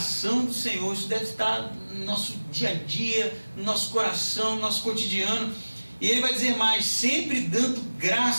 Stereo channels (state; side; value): inverted; both; correlation -1.00